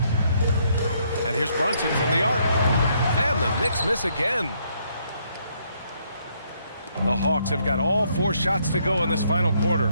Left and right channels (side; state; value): both; inverted; correlation -0.71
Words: And here's Brunson from the arc. And the Knicks miss again. The Hawks have got all 4 shots to go in this final quarter.